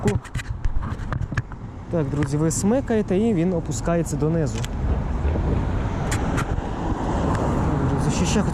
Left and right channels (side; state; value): both; identical; correlation 1.00